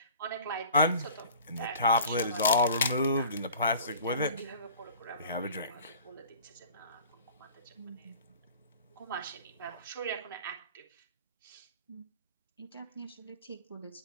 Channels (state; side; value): inverted; both; correlation -0.45